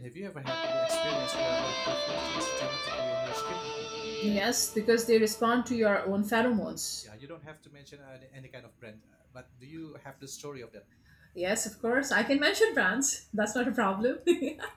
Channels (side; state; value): both; identical; correlation 1.00